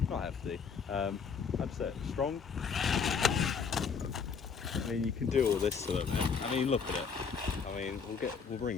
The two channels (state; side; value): quieter; right; 6.0 dB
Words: Not hefty, I'd say strong. I mean, you can do all this to them. I mean, look at it. I mean, we'll